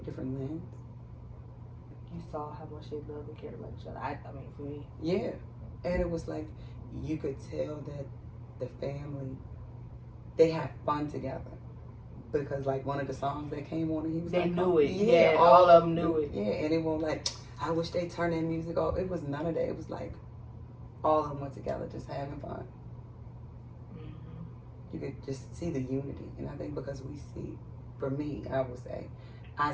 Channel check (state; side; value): identical; both; correlation 1.00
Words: lens? You saw how much they love and cared about each other. I mean, for me. Yeah. And it was like, you could tell that the family, they had fun together. Because like one of the songs that came on, and he was they like, knew it. Yeah, all of them knew it. Yeah, and it won't like, I wish they turned their music off. It was none of that. It was like, all of them went together just having fun. Mm-hmm. You could just see the unity. And I think because we see, for me, I would say, I